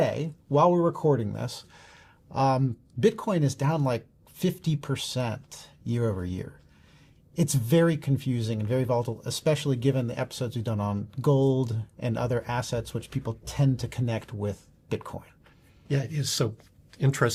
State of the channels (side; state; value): both; identical; correlation 1.00